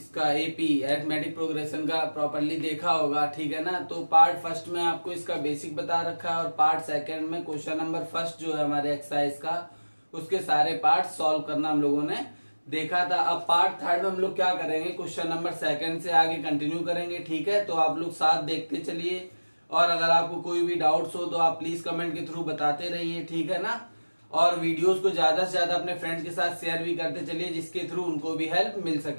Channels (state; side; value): inverted; both; correlation -1.00